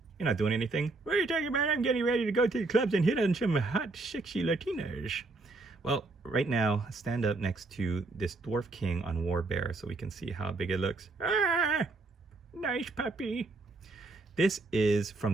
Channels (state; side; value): quieter; left; 3.4 dB